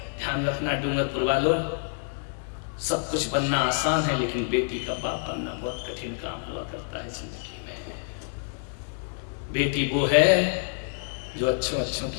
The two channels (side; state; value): right; silent; digital silence